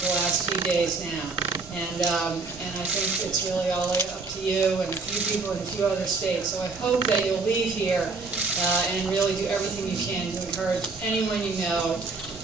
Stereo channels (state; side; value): quieter; left; 4.0 dB